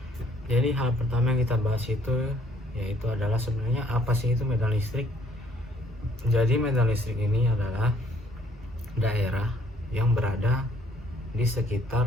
Jadi hal pertama yang kita bahas itu yaitu adalah sebenarnya apa sih itu medan listrik. Jadi medan listrik ini adalah daerah yang berada di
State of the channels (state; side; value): normal; both; correlation 0.63